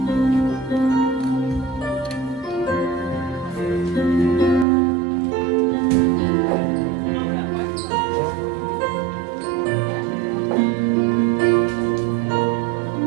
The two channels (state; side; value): drops out; left; at 4.7 s